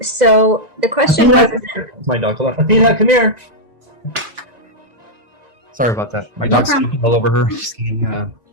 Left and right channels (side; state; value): left; late; 1.9 ms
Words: So the question was... My dog. Hold on. Athena, come here. Sorry about that. My dog's all over her. She's getting